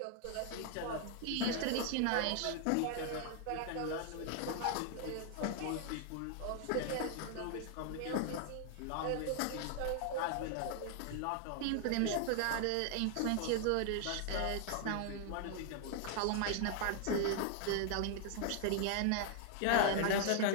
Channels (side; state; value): both; different; correlation 0.00